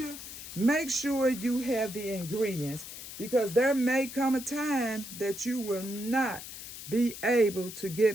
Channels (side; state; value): left; noise; hiss, 11 dB below the sound